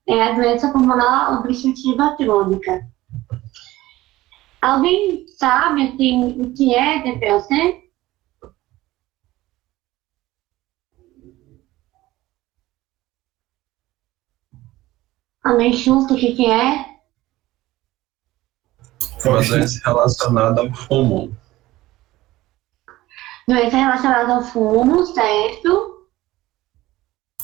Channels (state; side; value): quieter; left; 17.2 dB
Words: a doença pulmonar obstrutiva crônica. Alguém sabe assim, o que é DPOC? Alguém chuta o que é? É uma doença relacionada ao pulmão. Doença relacionada ao fumo, certo?